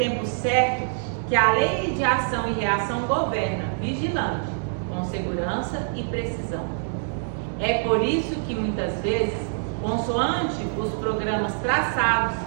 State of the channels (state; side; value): silent; left; digital silence